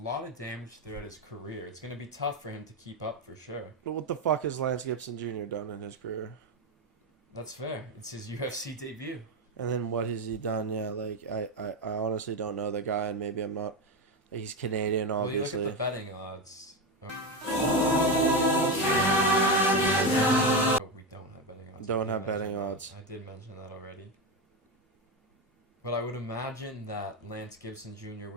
lot of damage throughout his career. It's going to be tough for him to keep up for sure. But what the fuck has Lance Gibson Jr. done in his career? That's fair. It's his UFC debut. And then what has he done? Yeah, like I honestly don't know the guy, and maybe I'm not. He's Canadian, obviously. Well, you look at the betting odds. But we don't have betting odds. Don't have I did betting mention odds. that. I did mention that already. But I would imagine that Lance Gibson Jr.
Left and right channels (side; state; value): both; normal; correlation 0.13